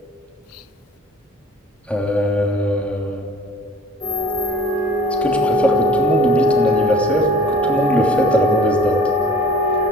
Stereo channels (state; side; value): normal; both; correlation 0.47